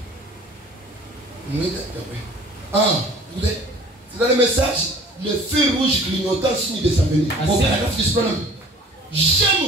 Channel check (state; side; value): normal; both; correlation 0.48